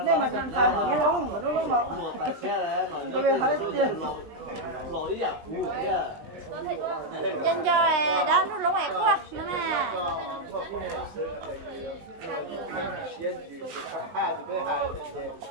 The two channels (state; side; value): late; left; 19 ms